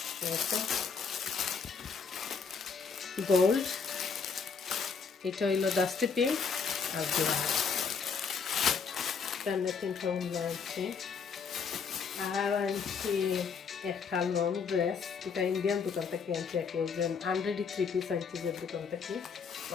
গোল্ড, এটা হইল ডাস্টি পিঙ্ক আর ব্ল্যাক, এখানে 3টা উন্না আনছি। আর আনছি একটা লং ড্রেস, এটা ইন্ডিয়ান দোকান থেকে আনছি, একজন আনরেডি 3 পিস আনছি যে দোকান থেকে,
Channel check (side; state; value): right; quieter; 5.8 dB